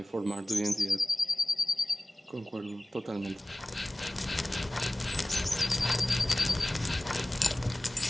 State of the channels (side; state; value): both; normal; correlation 0.96